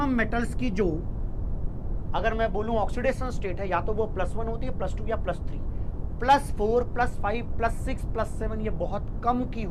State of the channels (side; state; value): both; identical; correlation 1.00